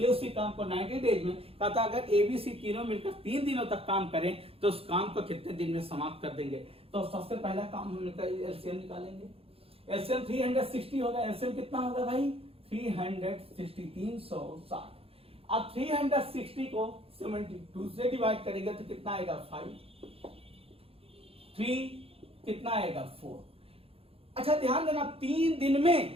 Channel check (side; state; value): left; late; 0.28 ms